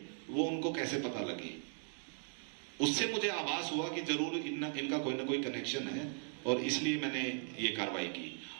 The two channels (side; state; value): left; silent; 52 dB below the other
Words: वो उनको कैसे पता लगी? उससे मुझे आभास हुआ कि जरूर इनका कोई ना कोई कनेक्शन है, और इसलिए मैंने ये कार्रवाई की।